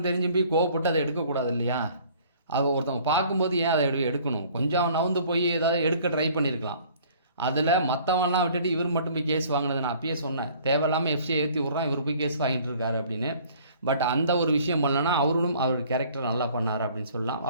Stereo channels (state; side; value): inverted; both; correlation -0.54